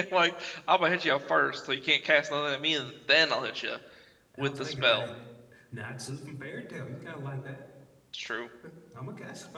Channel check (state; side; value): identical; both; correlation 1.00